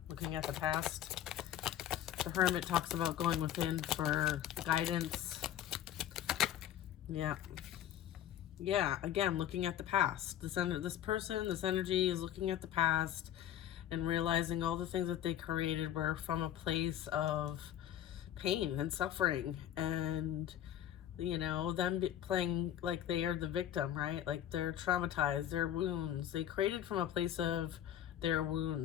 Looking at the past. The Hermit talks about going within for guidance. Yeah. Yeah, again, looking at the past. This energy is looking at the past and realizing all the things that they created were from a place of pain and suffering, and them playing like they are the victim, right? Like they're traumatized, their wounds. They created from a place of their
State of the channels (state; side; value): quieter; right; 11.2 dB